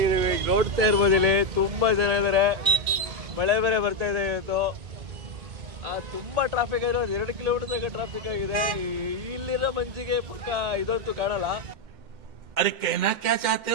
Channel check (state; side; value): late; left; 1.9 ms